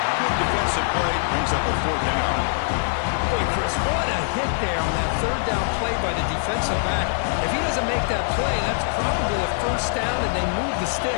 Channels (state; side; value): silent; right; digital silence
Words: Good defensive play. Brings up a fourth down. Boy, Chris, what a hit there on that third down play by the defensive back. If he doesn't make that play, that's probably a first down, and they move the